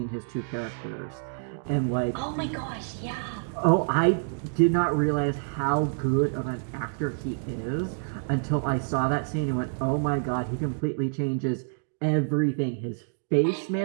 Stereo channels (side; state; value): left; silent; digital silence